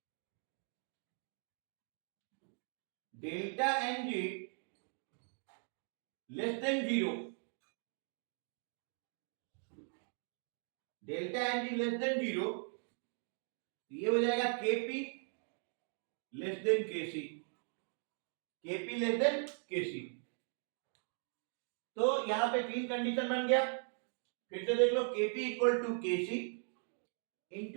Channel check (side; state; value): left; silent; 52 dB below the other